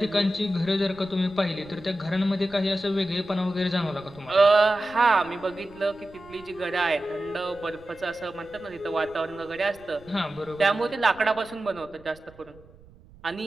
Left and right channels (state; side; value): noise; right; rumble, 24 dB below the sound